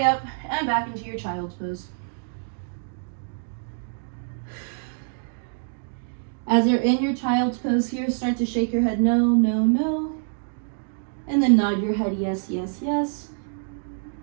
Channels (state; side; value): silent; left; digital silence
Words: up and back into your child's pose. As you're in your child's pose here, start to shake your head no, no, no. And then nod your head yes, yes, yes.